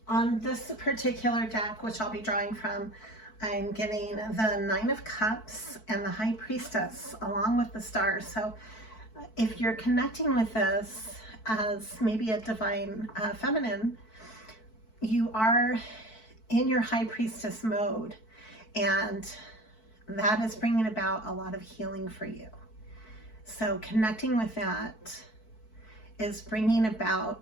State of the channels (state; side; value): late; right; 4.6 ms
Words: On this particular deck, which I'll be drawing from, I'm getting the Nine of Cups and the High Priestess along with the Star. So if you're connecting with this as maybe a divine feminine, you are in your High Priestess mode, and that is bringing about a lot of healing for you. So connecting with that is bringing